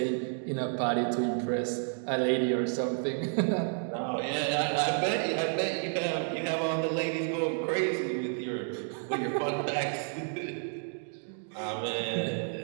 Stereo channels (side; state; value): left; silent; 57 dB below the other